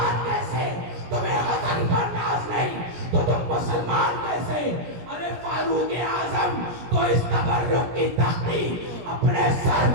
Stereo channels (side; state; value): left; late; 17 ms